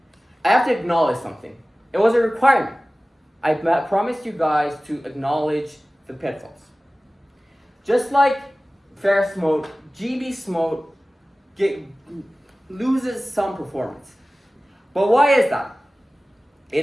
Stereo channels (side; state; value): both; normal; correlation 0.97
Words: I have to acknowledge something. It was a requirement. I promised you guys to acknowledge the pitfalls. Just like FAIR-SMOTE, GB-SMOTE loses some performance. But why is that?